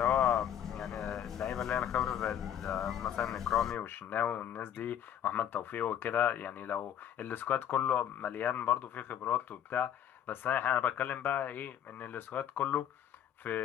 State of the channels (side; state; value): right; quieter; 9.8 dB